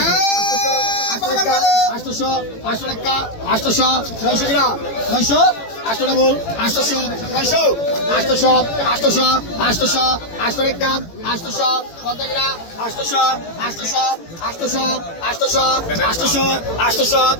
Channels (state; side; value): late; right; 18 ms